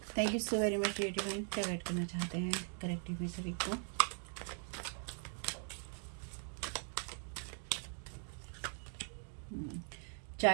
Thank you so very much dear divine. क्या गाइड करना चाहते हैं कलेक्टिव में सभी को।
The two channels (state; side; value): silent; left; 51 dB below the other